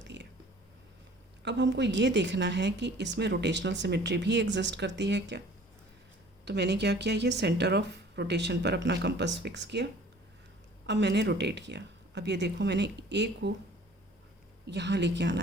है. अब हमको ये देखना है कि इसमें रोटेशनल सिमेट्री भी एग्जिस्ट करती है क्या. तो मैंने क्या किया, ये सेंटर ऑफ रोटेशन पर अपना कंपास फिक्स किया. अब मैंने रोटेट किया. अब ये देखो, मैंने ए को यहाँ लेके आना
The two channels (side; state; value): both; normal; correlation 0.50